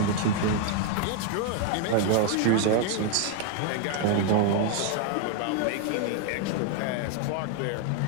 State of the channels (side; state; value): both; different; correlation 0.01